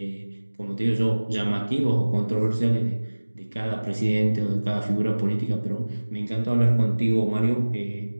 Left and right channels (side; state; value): both; inverted; correlation -1.00